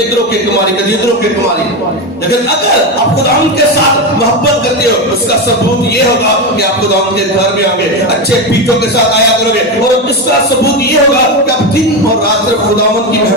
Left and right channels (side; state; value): both; normal; correlation 0.15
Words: के कुमारी कभी इधरों के कुमारी लेकिन अगर आप खुदावंद के साथ मोहब्बत करते हो उसका सबूत ये होगा कि आप खुदावंद के घर में आओगे अच्छे पीठों के साथ आया करोगे और इसका सबूत ये होगा कि आप दिन और रात सिर्फ खुदावंद की